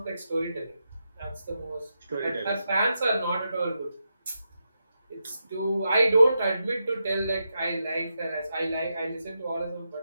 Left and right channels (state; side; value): inverted; both; correlation -0.86